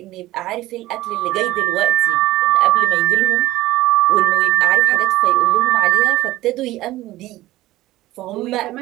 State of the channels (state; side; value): quieter; left; 16.8 dB